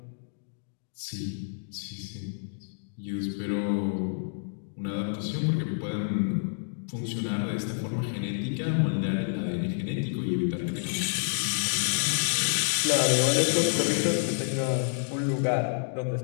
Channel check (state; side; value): silent; right; digital silence